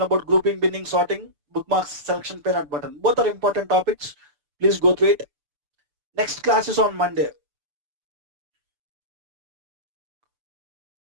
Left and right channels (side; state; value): left; late; 6.9 ms